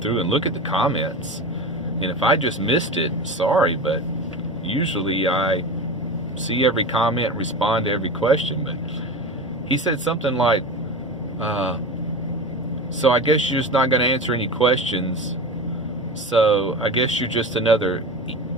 and look at the comments. And if I just missed it, sorry, but usually I see every comment and respond to every question. But he said something like, so I guess you're just not going to answer any questions, so I guess you're just another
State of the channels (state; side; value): normal; both; correlation 0.28